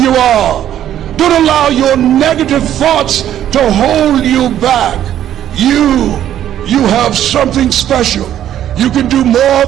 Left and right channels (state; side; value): quieter; left; 11.2 dB